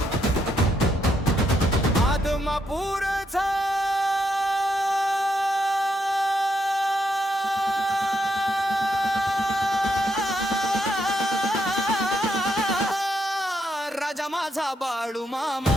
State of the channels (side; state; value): both; normal; correlation 0.78